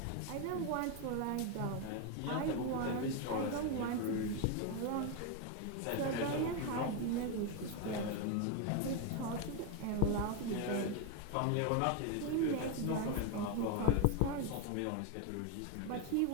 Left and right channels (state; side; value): different; both; correlation 0.02